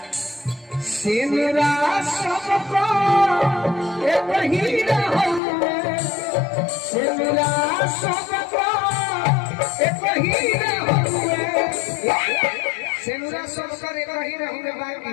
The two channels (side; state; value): right; drops out; at 5.4 s